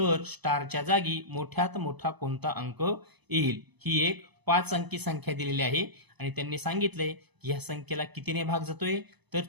स्टारच्या जागी मोठ्यात मोठा कोणता अंक येईल? ही एक 5 अंकी संख्या दिलेली आहे आणि त्यांनी सांगितलंय की या संख्येला कितीने भाग जातोय? तर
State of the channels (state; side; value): late; left; 0.99 ms